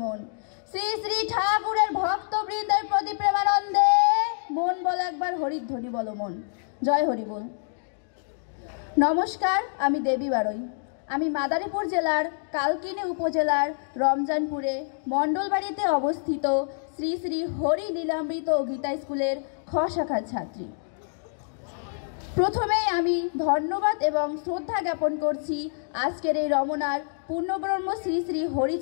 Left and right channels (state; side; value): silent; right; digital silence